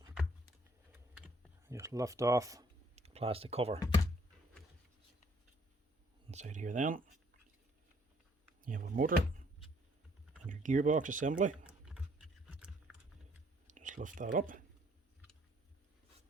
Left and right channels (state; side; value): normal; both; correlation 0.64